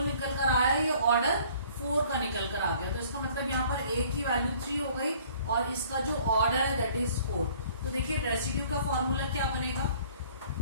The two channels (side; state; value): both; inverted; correlation -0.55